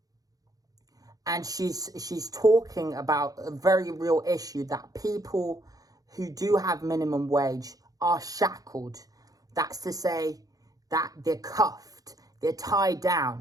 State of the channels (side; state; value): left; late; 0.18 ms